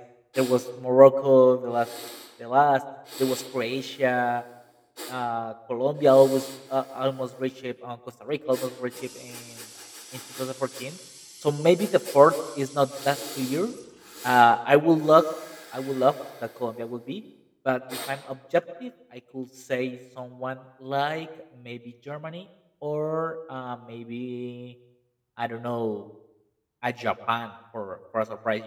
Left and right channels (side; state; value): both; identical; correlation 1.00